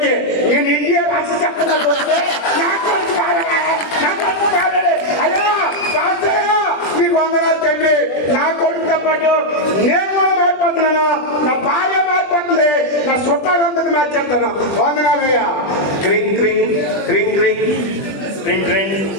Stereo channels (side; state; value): right; late; 20 ms